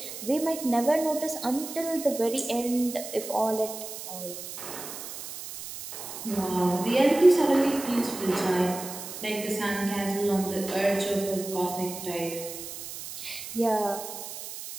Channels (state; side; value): noise; right; hiss, 10 dB below the sound